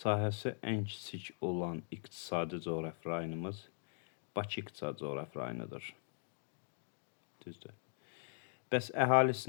ən kiçik olan iqtisadi coğrafi rayonumuz Bakı iqtisadi coğrafi rayonudur. Düzdür. Bəs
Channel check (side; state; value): right; silent; digital silence